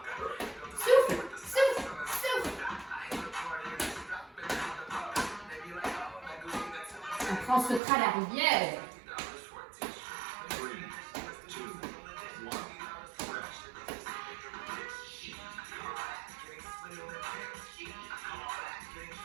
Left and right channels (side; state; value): left; drops out; at 7.8 s